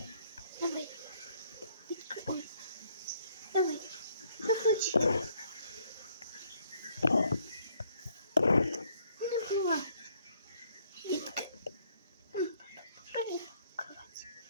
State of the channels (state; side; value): inverted; both; correlation -0.67